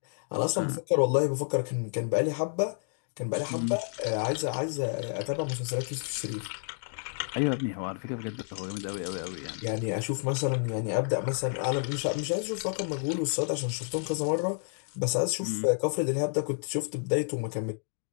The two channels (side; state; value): right; silent; 58 dB below the other